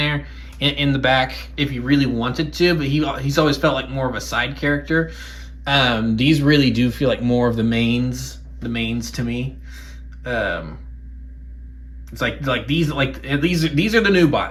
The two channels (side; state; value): both; identical; correlation 1.00